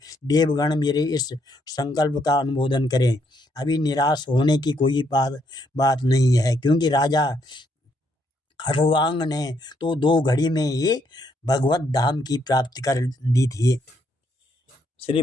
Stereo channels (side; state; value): both; normal; correlation 0.73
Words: देवगण मेरे इस संकल्प का अनुमोदन करें। अभी निराश होने की कोई बात नहीं है, क्योंकि राजा खरवांग ने तो 2 घड़ी में ही भगवत धाम की प्राप्ति कर दी थी।